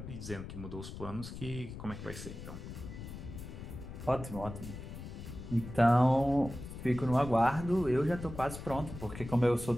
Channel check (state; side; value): noise; left; rumble, 10 dB below the sound